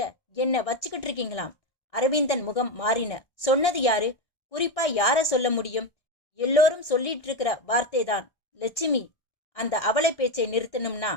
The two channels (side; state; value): right; late; 1.4 ms